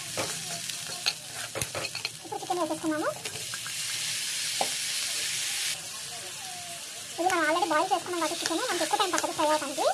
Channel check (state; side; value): identical; both; correlation 1.00